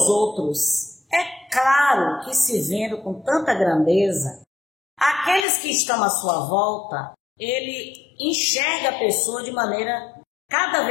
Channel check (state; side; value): drops out; right; at 5.5 s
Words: outros. É claro que, se vendo com tanta grandeza, aqueles que estão à sua volta, ele enxerga a pessoa de maneira cada